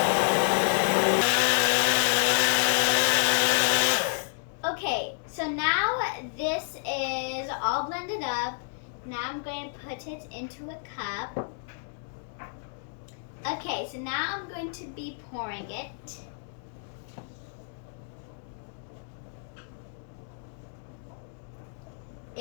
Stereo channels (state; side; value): silent; right; digital silence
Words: Okay, so now this is all blended up. Now I'm going to put it into a cup. Okay, so now I'm going to be pouring it.